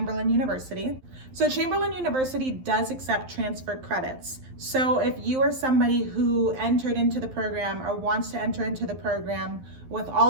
University. So Chamberlain University does accept transfer credits. So if you are somebody who entered into the program or wants to enter into the program with all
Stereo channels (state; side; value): late; left; 11 ms